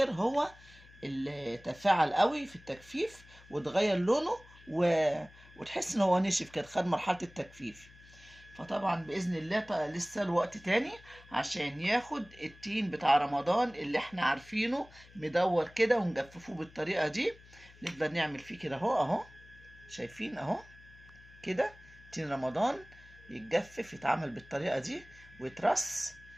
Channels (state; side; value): noise; left; hum, 23 dB below the sound